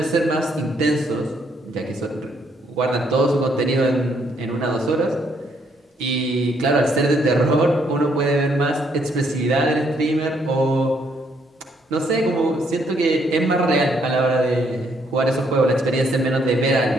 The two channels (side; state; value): both; normal; correlation 0.71